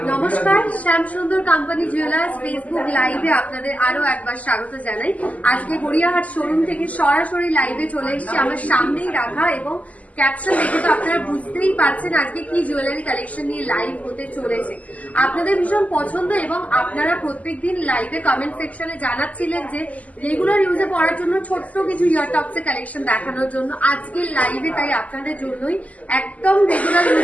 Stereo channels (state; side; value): late; right; 0.072 ms